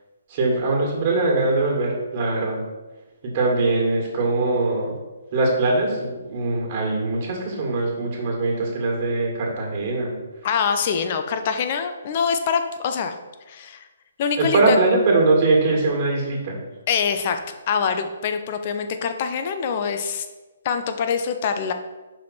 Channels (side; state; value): both; inverted; correlation -0.59